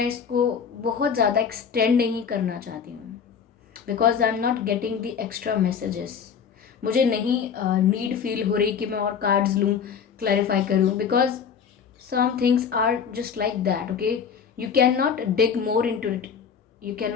इसको बहुत ज़्यादा एक्सटेंड नहीं करना चाहती हूँ, because I am not getting the extra messages. मुझे नहीं नीड फील हो रही कि मैं और कार्ड्स लूँ, क्लैरिफाई करूँ, because some things are just like that, okay. You can not dig more into it, you can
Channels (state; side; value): quieter; right; 7.0 dB